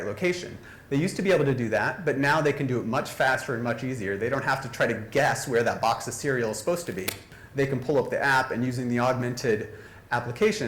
location. They used to be able to do that, but now they can do it much faster and much easier. They don't have to try to guess where that box of cereal is supposed to be. They can pull up the app and using the augmented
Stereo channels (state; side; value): identical; both; correlation 1.00